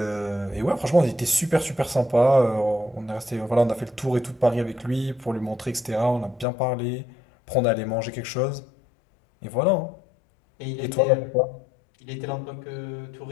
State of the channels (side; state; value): right; drops out; at 6.5 s